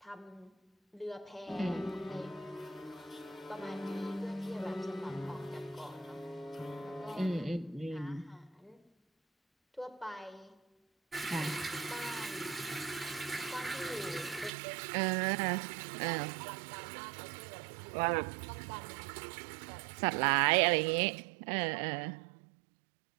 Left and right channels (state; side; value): drops out; left; at 14.5 s